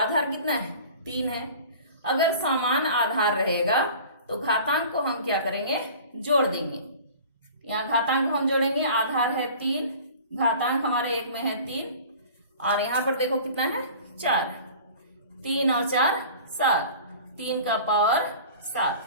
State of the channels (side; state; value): both; inverted; correlation -0.42